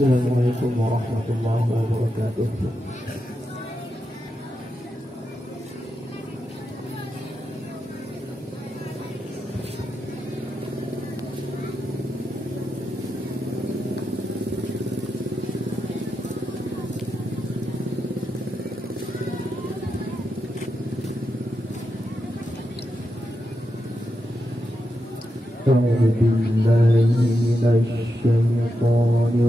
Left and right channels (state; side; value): normal; both; correlation 0.87